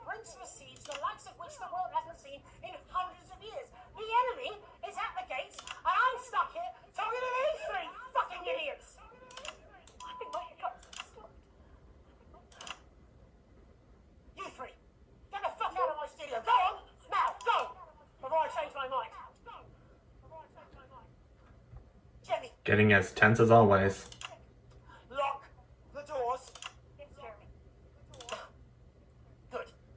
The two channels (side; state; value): both; identical; correlation 1.00